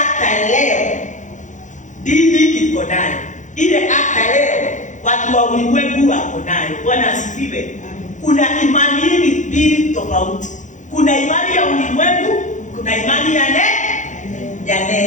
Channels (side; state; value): right; late; 0.36 ms